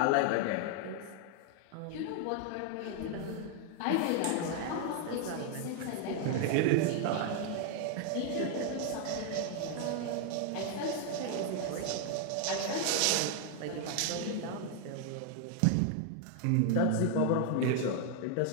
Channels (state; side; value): different; both; correlation 0.00